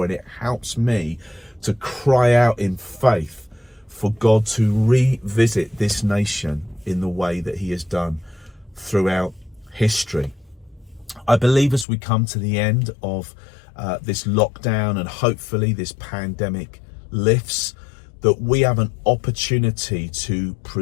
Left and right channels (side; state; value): right; drops out; at 11.9 s